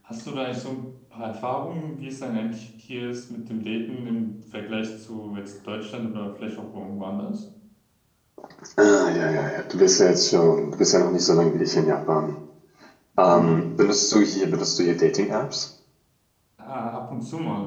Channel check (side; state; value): both; identical; correlation 1.00